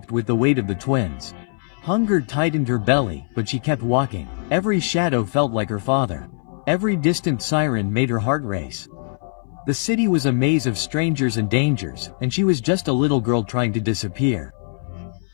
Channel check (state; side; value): silent; right; 60 dB below the other